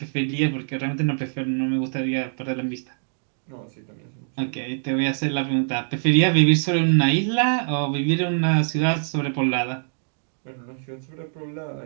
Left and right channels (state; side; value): silent; left; digital silence